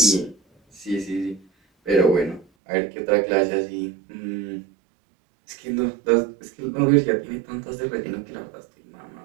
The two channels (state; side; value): drops out; left; at 2.5 s